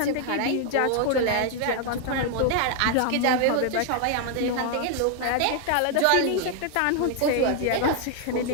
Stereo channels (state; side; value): different; both; correlation 0.00